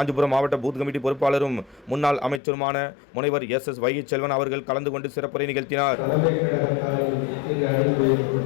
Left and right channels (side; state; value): right; drops out; at 2.4 s